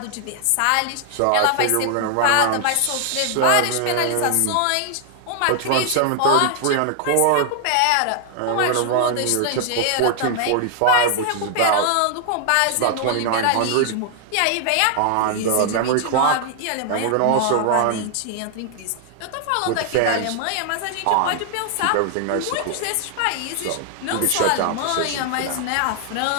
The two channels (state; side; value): different; both; correlation 0.00